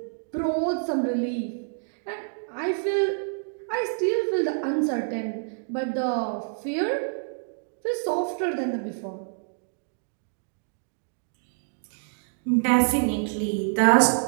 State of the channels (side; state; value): left; silent; digital silence